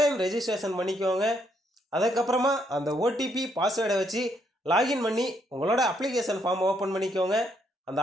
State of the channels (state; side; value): normal; both; correlation 0.73